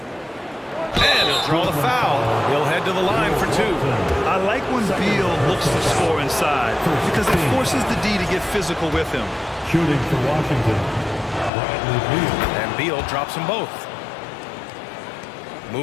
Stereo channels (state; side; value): drops out; right; at 11.5 s